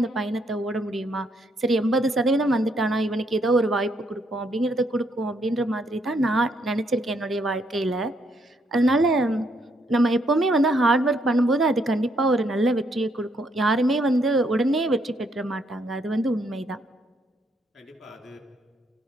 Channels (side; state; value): both; normal; correlation 0.73